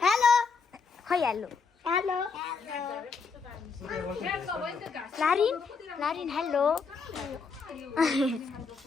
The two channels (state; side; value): quieter; right; 5.0 dB